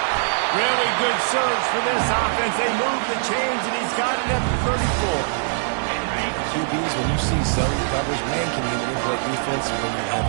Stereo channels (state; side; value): silent; left; digital silence